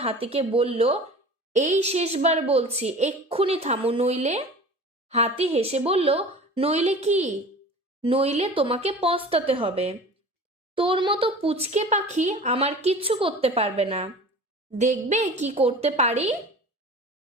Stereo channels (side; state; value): both; normal; correlation 0.39